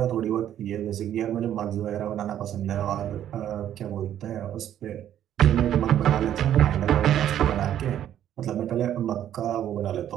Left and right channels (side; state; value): left; quieter; 10.9 dB